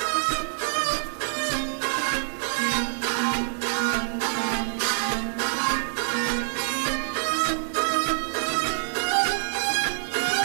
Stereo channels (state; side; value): silent; left; digital silence